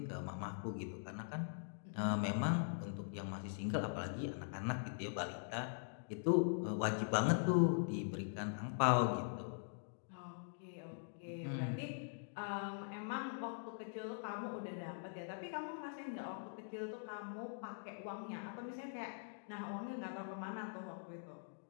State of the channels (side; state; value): right; silent; digital silence